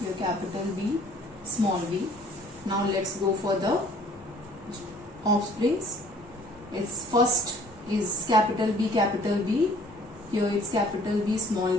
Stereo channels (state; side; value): normal; both; correlation 0.55